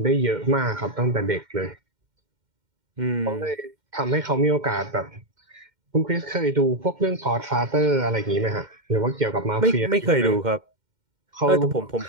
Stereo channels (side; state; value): left; late; 2.1 ms